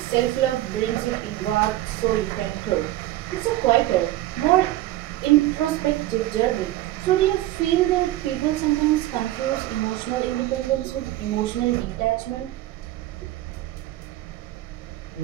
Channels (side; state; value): left; quieter; 15.5 dB